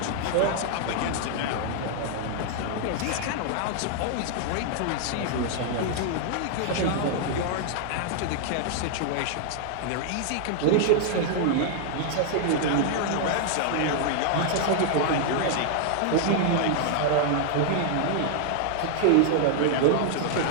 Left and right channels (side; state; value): both; different; correlation 0.00